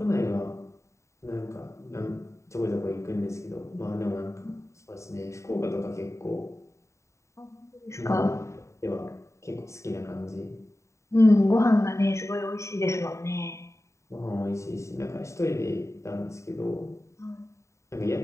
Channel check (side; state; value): right; late; 0.14 ms